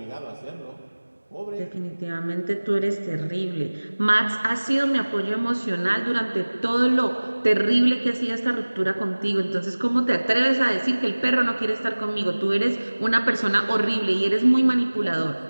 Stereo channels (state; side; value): inverted; both; correlation -1.00